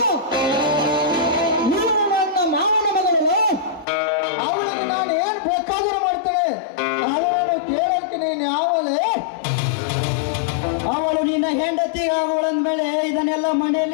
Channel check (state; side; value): drops out; right; at 3.9 s